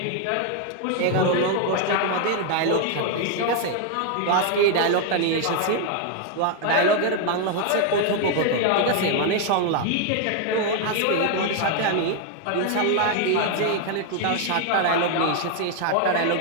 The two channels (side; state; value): both; different; correlation 0.00